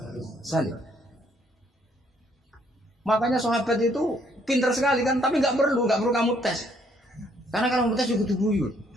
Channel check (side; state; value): both; normal; correlation 0.67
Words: salim. Makanya sahabat itu pintar sekali kan, tapi nggak perlu kamu tes. Karena kalau kamu tes juga guyu.